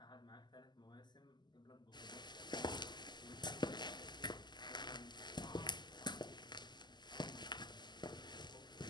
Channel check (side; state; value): right; late; 0.21 ms